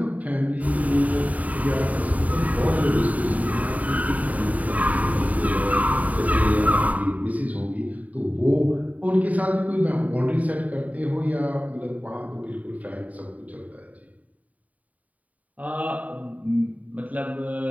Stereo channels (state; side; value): late; left; 0.072 ms